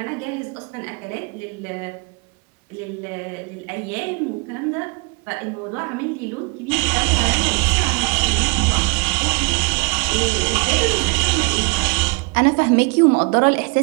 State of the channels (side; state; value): left; quieter; 29.8 dB